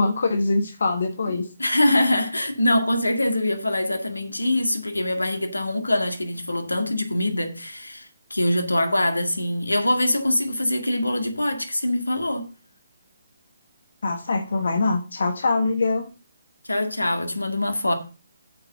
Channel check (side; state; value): both; inverted; correlation -0.92